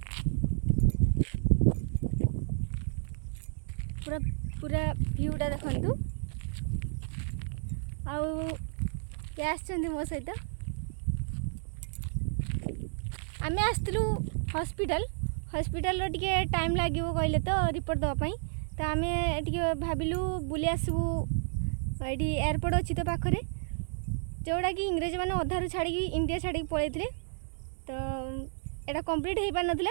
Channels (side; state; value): left; silent; digital silence